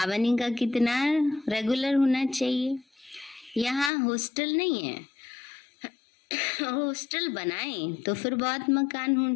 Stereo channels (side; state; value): right; drops out; at 3.9 s